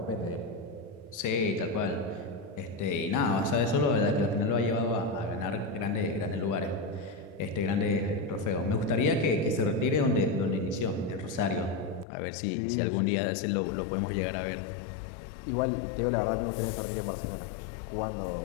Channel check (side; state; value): right; drops out; at 12.1 s